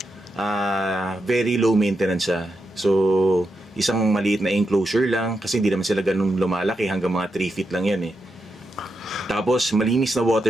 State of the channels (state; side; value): normal; both; correlation 0.85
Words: very low maintenance siya. So, isang maliit na enclosure lang, kasi hindi naman sila ganun lumalaki, hanggang mga 3 feet lang yan eh. Tapos, malinis na